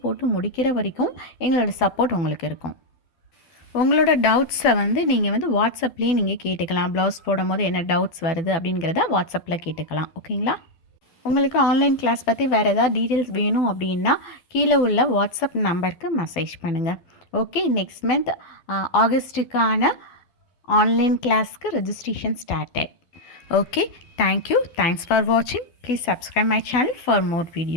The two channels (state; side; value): late; right; 12 ms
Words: போட்டு முடிக்கிற வரைக்கும் எங்களோட சப்போர்ட் உங்களுக்கு இருக்கும். உங்களோட டவுட்ஸை வந்து நீங்கள் வந்து வாட்ஸ்அப்லேயே நீங்கள் கேட்டுக்கலாம். ப்ளவுஸ் போடும் போது என்ன டவுட்ஸ் வருது அப்படிங்கிறத வாட்ஸ்அப்பில் கேட்டுக்கலாம். ஓகேங்களா, உங்களுக்கு ஆன்லைன் கிளாஸ் பற்றி வேறு ஏதாவது டீட்டெயில்ஸ் வேணும் அப்படின்னா கீழே உள்ள வாட்ஸ்அப் நம்பருக்கு மெசேஜ் பண்ணுங்கள். ஓகே, நெக்ஸ்ட் மந்த் ஆகஸ்ட்டுக்கான ஆன்லைன் கிளாஸ்க்கு registration started. Okay, thank you. Thanks for வாட்சிங். Please subscribe my channel for more